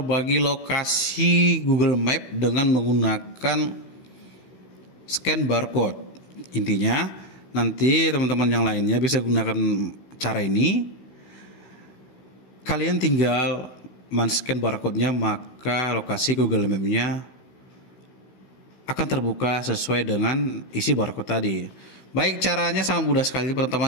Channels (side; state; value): right; late; 16 ms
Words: lokasi Google Map dengan menggunakan scan barcode. Intinya nanti teman-teman yang lainnya bisa gunakan cara ini. Kalian tinggal men-scan barcode-nya, maka lokasi Google Map-nya akan terbuka sesuai dengan isi barcode tadi. Baik, caranya sangat mudah sekali.